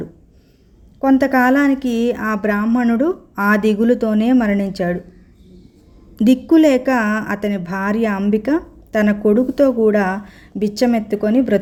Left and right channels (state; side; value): identical; both; correlation 1.00